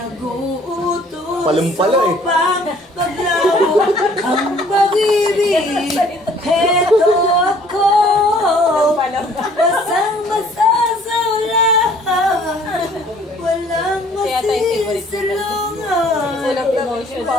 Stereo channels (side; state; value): both; normal; correlation 0.57